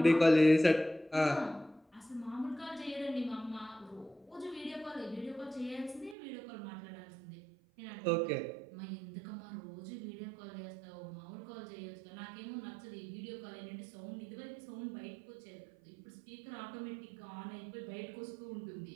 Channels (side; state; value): left; drops out; at 6.2 s